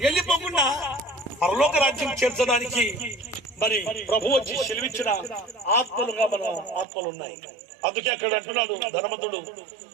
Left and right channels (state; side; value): drops out; left; at 6.9 s